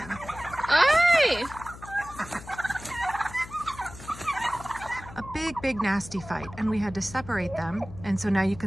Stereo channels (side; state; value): left; noise; hum, 15 dB below the sound